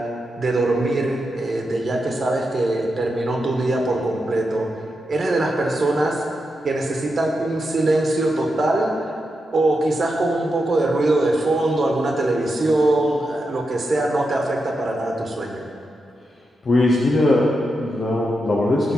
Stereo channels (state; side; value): normal; both; correlation 0.87